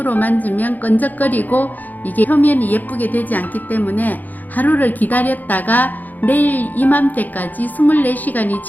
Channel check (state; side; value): late; right; 0.083 ms